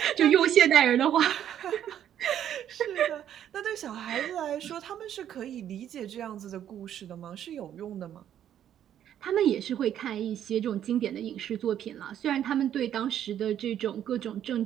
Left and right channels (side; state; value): left; quieter; 10.4 dB